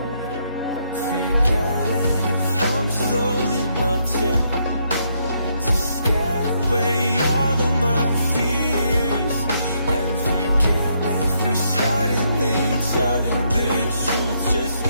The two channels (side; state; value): both; inverted; correlation -0.75